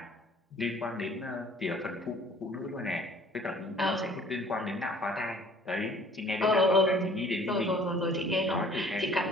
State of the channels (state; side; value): normal; both; correlation 0.53